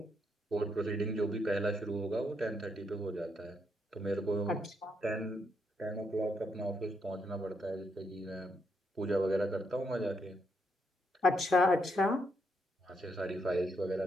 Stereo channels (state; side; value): normal; both; correlation 0.77